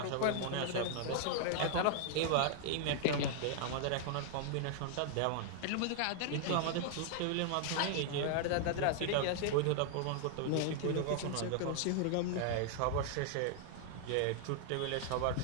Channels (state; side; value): different; both; correlation -0.01